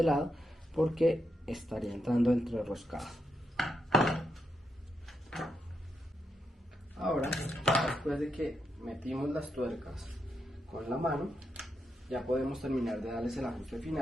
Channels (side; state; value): both; normal; correlation 0.83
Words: lado, porque estaría entrando entrerroscado. Ahora, después de que metimos las tuercas con la mano, ya podemos terminar de darles el ajuste